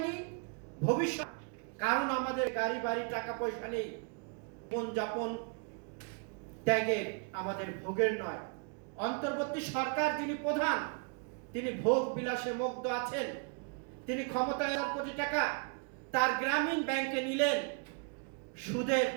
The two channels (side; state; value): left; quieter; 38.6 dB